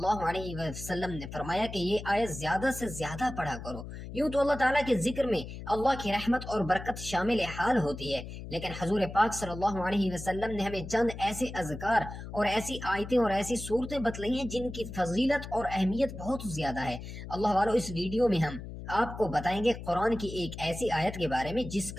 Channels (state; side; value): noise; left; hum, 10 dB below the sound